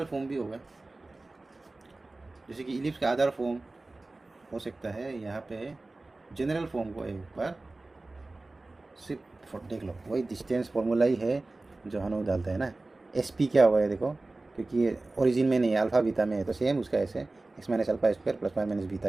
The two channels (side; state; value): left; quieter; 3.1 dB